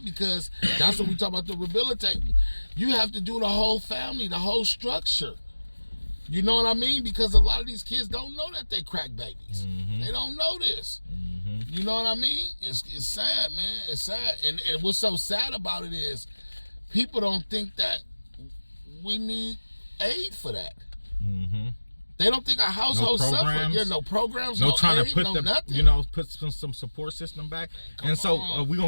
because that's what we talk about, the rehabilitating. You have to do the whole family, the whole structure. You know what I mean? Because a lot of these kids don't know that they crack babies. They don't know this. You know what I mean? It's sad, man. It's sad. And what's so sad about it is people don't think that we need aid for that. They don't think our household suffer. Yeah, no programs, no trying aid, to put no nothing. you know, put some support system back. And so we're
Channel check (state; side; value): inverted; both; correlation -1.00